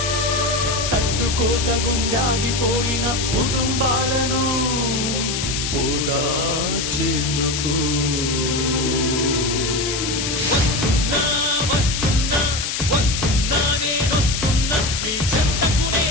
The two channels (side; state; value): left; noise; hiss, 2 dB below the sound